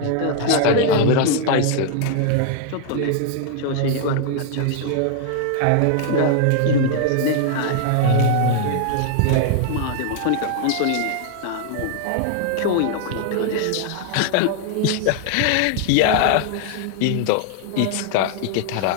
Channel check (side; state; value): both; different; correlation 0.00